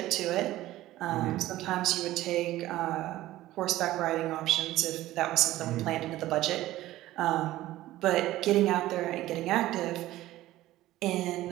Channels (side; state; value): left; quieter; 15.7 dB